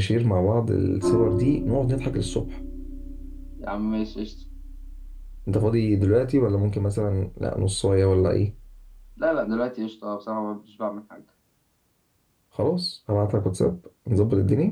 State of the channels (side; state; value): both; identical; correlation 1.00